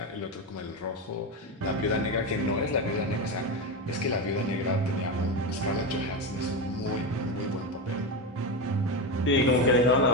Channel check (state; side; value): normal; both; correlation 0.15